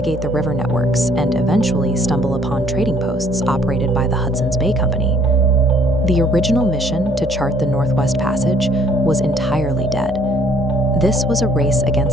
the river networks and eventually stumble upon trading posts operated by the Hudson's Bay Company. The original mission to chart the Northwest Passage was entirely dead. This was a race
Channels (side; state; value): both; normal; correlation 0.61